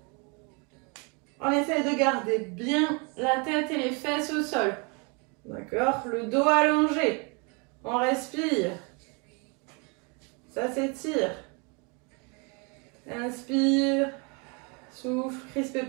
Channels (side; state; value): left; quieter; 32.5 dB